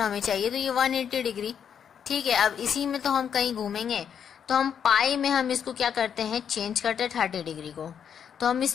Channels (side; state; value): right; quieter; 8.0 dB